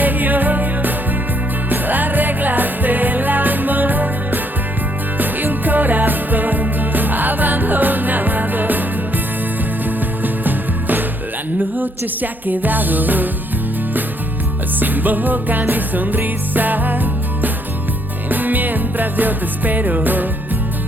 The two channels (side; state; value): both; normal; correlation 0.70